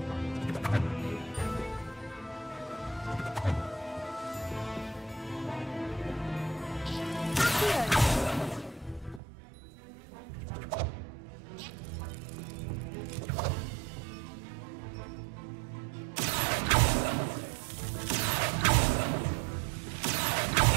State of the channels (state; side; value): drops out; left; at 9.2 s